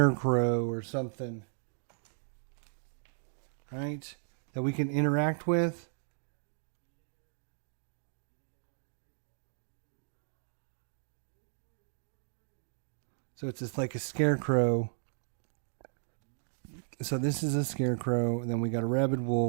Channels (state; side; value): silent; left; digital silence